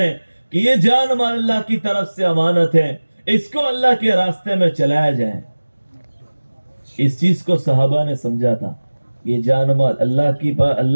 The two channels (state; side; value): inverted; both; correlation -1.00